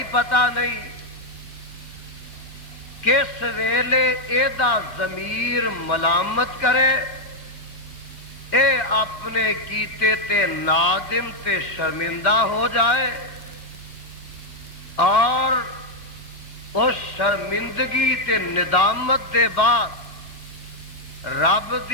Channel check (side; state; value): right; late; 2.3 ms